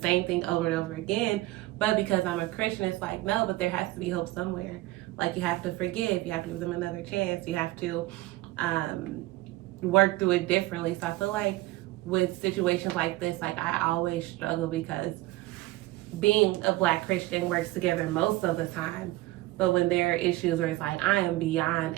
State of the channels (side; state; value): left; quieter; 18.4 dB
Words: same thing over and over again. But because I'm a Christian, it's like, no, but there has to be hope somewhere. Like, you have to forgive. You have to give them another chance. You have to work through it differently. So I feel like with situations like this, like, I always struggle because being a Black Christian works together most of the time. But when there are issues where it's like, I am beyond